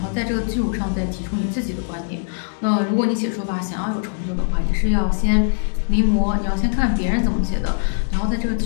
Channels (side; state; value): right; silent; digital silence